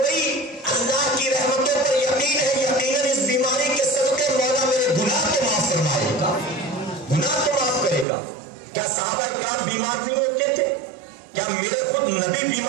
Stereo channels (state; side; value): drops out; left; at 8.1 s